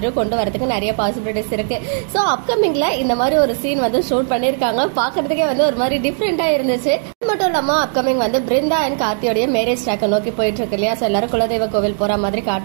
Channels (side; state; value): left; silent; digital silence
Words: கொண்டு வரதுக்கு நிறைய பாசிபிலிட்டிஸ் இருக்கு. சோ அப்கமிங்ல இந்த மாதிரி ஒரு சீன் வந்து ஷூட் பண்ணிருக்காங்க. பாக்குறதுக்கே வந்து ஒரு மாதிரி டிஃபரெண்டா இருந்துச்சு. அது மட்டும் இல்லாம அப்கமிங் வந்து பிருந்தா அண்ட் கார்த்தியோடைய மேரேஜ் ட்ராக்கை நோக்கி போயிட்டு இருக்கு இல்லையா. சோ எல்லாரும் குலதெய்வ கோவில் போற மாதிரி